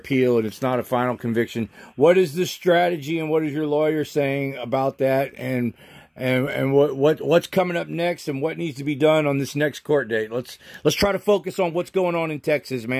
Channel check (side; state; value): both; identical; correlation 1.00